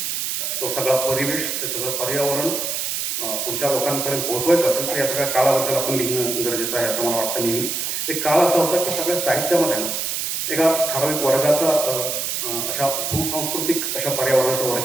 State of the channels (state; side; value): noise; right; hiss, 2 dB below the sound